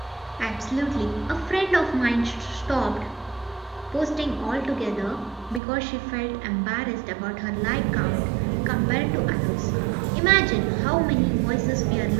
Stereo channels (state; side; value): drops out; left; at 5.6 s